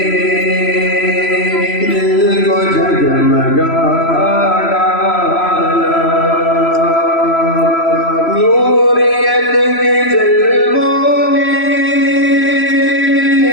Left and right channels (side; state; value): right; late; 3.0 ms